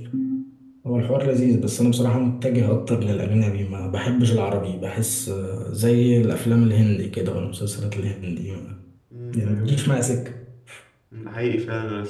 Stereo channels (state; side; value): identical; both; correlation 1.00